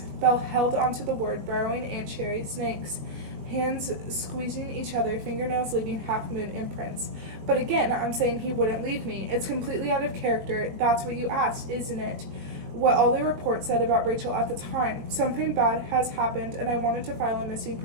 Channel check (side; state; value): left; late; 20 ms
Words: Belle held onto the word, burrowing ant cherry snakes. Hands squeezing each other, fingernails leaving half-moon imprints. But again, I'm saying he wouldn't leave me. It's completely out of character. That's what you asked, isn't it? What all the reports said about Rachel at the time. Something bad has happened, and I wanted to file a missing